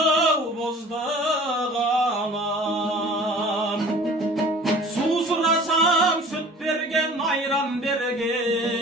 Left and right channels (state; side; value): normal; both; correlation 0.45